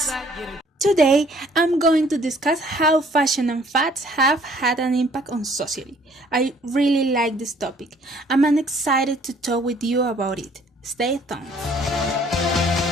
Today, I'm going to discuss how fashion and fads have had an impact on society. I really like this topic. I'm excited to talk with you about it. Stay tuned.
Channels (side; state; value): both; normal; correlation 0.59